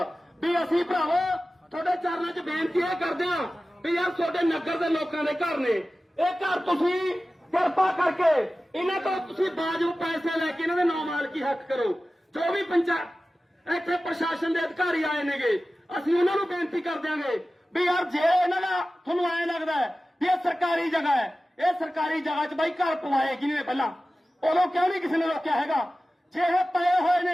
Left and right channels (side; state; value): both; normal; correlation 0.96